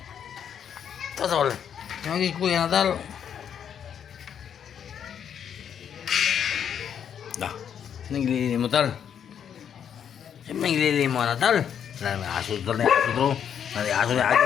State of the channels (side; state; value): right; quieter; 8.5 dB